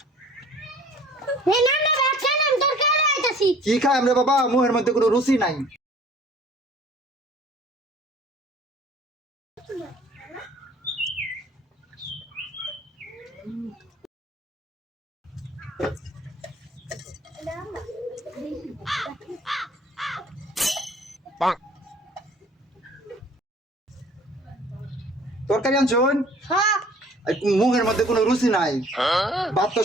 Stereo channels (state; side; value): normal; both; correlation 0.52